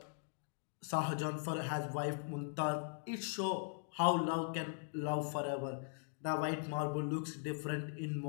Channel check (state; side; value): silent; right; digital silence